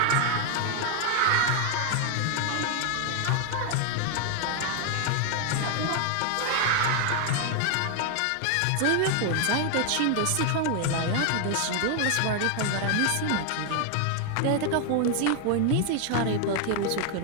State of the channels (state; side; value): different; both; correlation 0.01